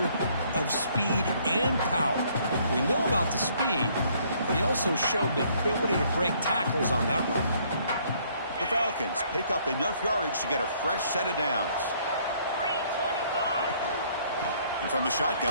of speed and power. We know about the speed, but he also showed the ability to break tackles on that run. The Falcons pick up enough yardage to get a fresh set of downs. And from the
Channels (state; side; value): inverted; both; correlation -0.64